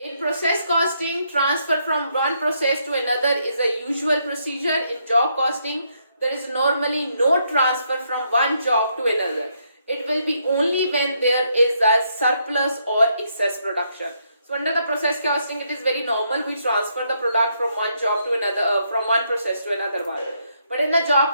In process costing, transfer from one process to another is a usual procedure. In job costing, there is normally no transfer from one job to another. It will be only when there is a surplus or excess production. So under the process costing, it is very normal we transfer the product from one job to another, from one process to another one. But in the job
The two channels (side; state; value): both; inverted; correlation -0.75